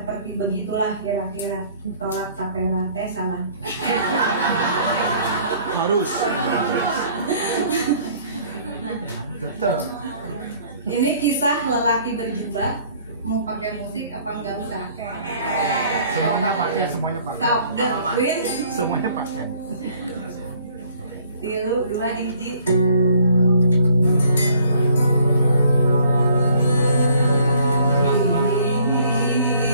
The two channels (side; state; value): both; inverted; correlation -0.58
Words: begitulah kira-kira tolak tapera, salah. Harus. Tetap. Ini kisah lelaki berjubah. Mau pakai musik apa enggak usah? Semuanya pakai, semuanya pakai. Stop the wind. Semuanya pakai. 3, 2, hiji.